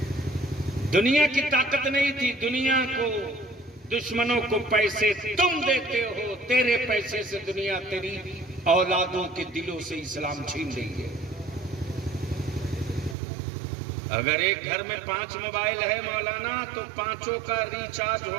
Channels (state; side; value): drops out; left; at 13.2 s